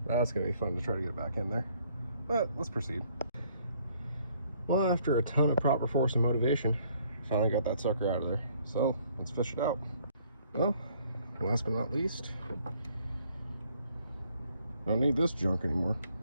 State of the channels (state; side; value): inverted; both; correlation -0.64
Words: that's gonna be fun to try to get back in there, but let's proceed. Well, after a ton of proper force and motivation, I finally got that sucker out of there, so let's fish it out. Well, last but not least, don't need this junk anymore.